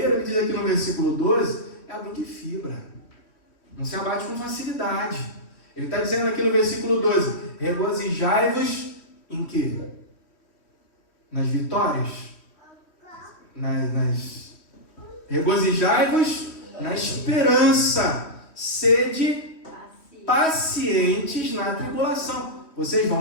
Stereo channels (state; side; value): late; right; 3.1 ms